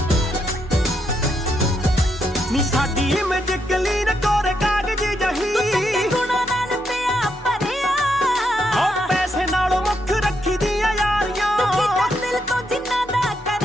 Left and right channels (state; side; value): normal; both; correlation 0.79